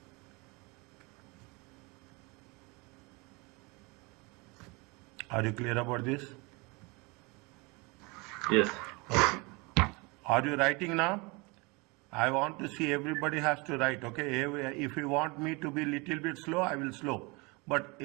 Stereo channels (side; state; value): left; quieter; 27.5 dB